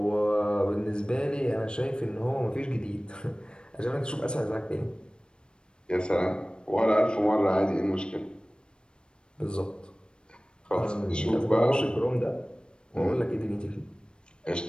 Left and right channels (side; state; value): right; late; 0.053 ms